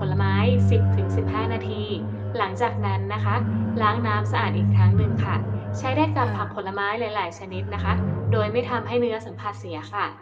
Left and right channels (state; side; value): identical; both; correlation 1.00